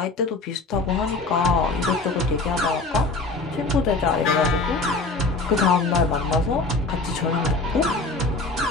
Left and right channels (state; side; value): quieter; right; 3.5 dB